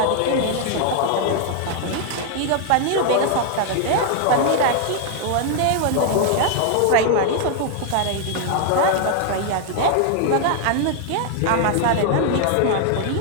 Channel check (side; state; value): both; different; correlation 0.00